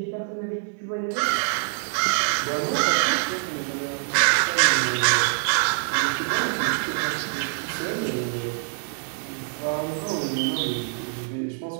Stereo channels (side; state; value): left; silent; digital silence